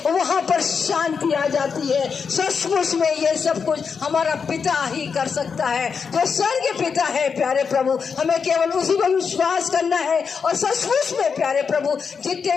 वहाँ पर शांति आ जाती है। सचमुच में ये सब कुछ हमारा पिता ही कर सकता है, जो स्वर्ग पिता है प्यारे प्रभु। हमें केवल उसी पर विश्वास करना है। और सचमुच में प्यारे प्रभु, जितने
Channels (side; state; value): right; quieter; 5.9 dB